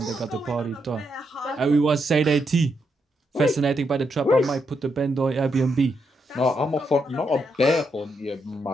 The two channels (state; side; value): normal; both; correlation 0.80